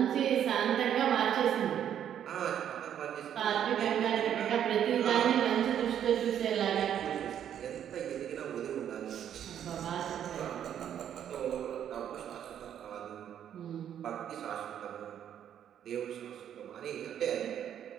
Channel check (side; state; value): left; quieter; 9.7 dB